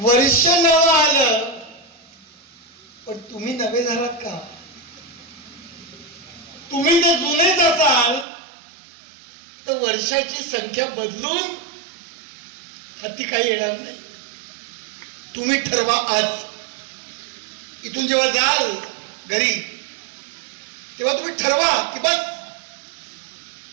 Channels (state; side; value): drops out; left; at 8.2 s